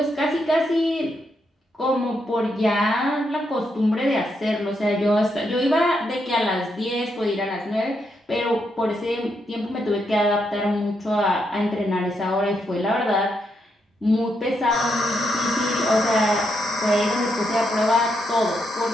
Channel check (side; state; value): both; normal; correlation 0.80